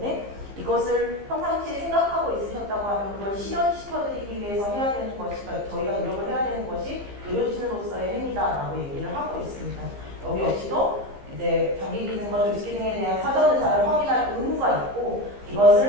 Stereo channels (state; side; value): late; left; 15 ms